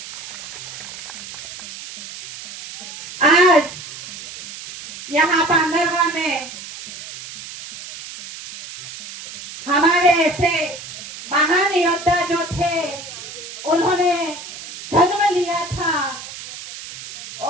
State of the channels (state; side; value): noise; right; hiss, 12 dB below the sound